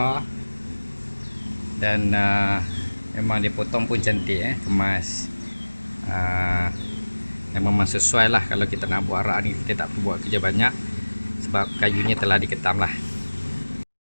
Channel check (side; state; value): both; inverted; correlation -1.00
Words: Dan memang dia potong pun cantik, kemas. Memang sesuai lah kalau kita nak buat rak ni. Kita tak perlu buat kerja banyak sebab kayunya telah diketam lah.